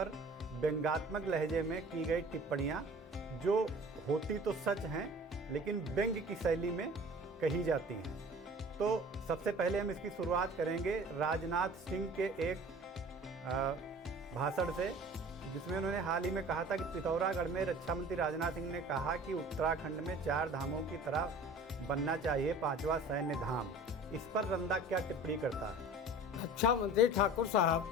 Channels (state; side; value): normal; both; correlation 0.44